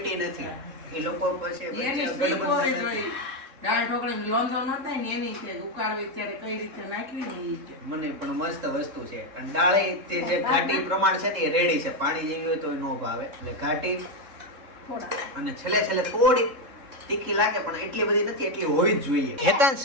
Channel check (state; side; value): late; left; 3.7 ms